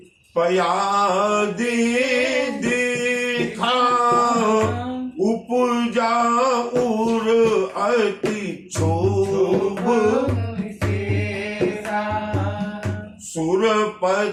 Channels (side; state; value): both; identical; correlation 1.00